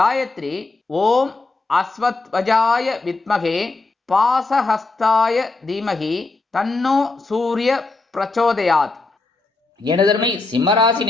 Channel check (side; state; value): right; quieter; 3.5 dB